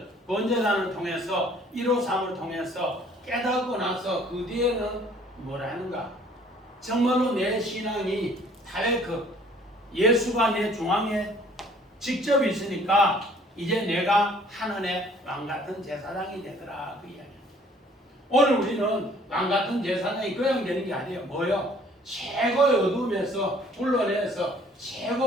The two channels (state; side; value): normal; both; correlation 0.57